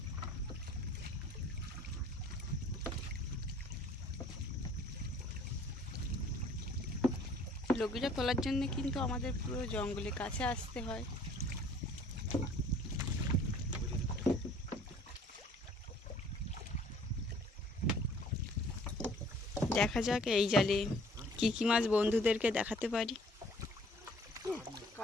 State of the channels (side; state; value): both; normal; correlation 0.56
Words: লগিটা তোলার জন্য কিন্তু আমাদের পুরো জঙ্গলের কাছে আসতে হয়। দেখা যাক এই জালে কি কি মাছ বন্ধুদেরকে দেখাতে পারি।